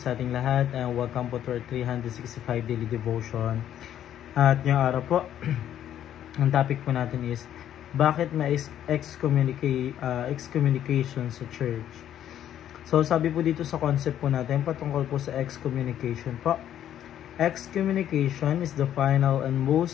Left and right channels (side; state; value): right; quieter; 10.8 dB